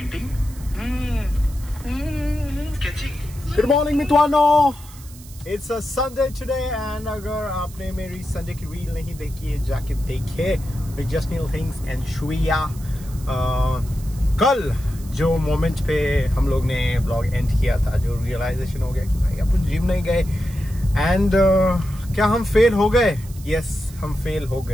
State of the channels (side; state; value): right; noise; hiss, 20 dB below the sound